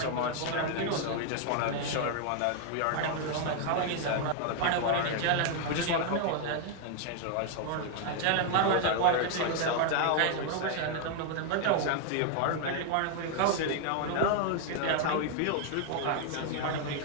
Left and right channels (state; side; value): different; both; correlation 0.00